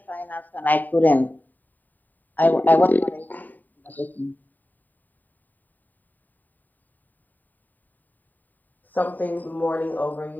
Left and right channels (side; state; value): right; late; 0.087 ms